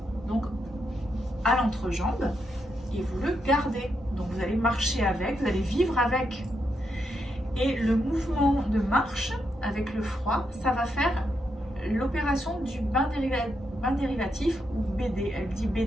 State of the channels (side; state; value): both; normal; correlation 0.82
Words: donc à l'entrejambe et vous le gardez. Donc vous allez marcher avec, vous allez vivre avec. Et le mouvement de marche avec le froid, ça va faire l'opération du bain dérivatif ou BD. Elle dit